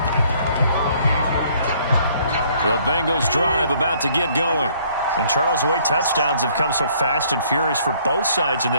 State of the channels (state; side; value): inverted; both; correlation -0.62